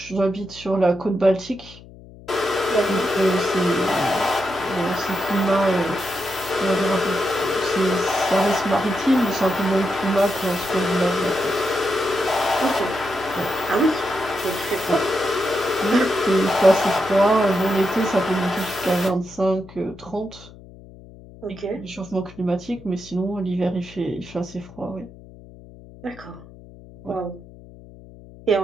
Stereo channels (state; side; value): noise; left; hum, 20 dB below the sound